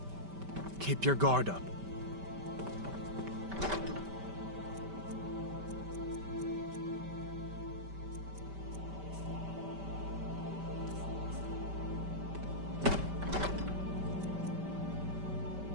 Keep your guard up.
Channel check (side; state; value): left; late; 5.1 ms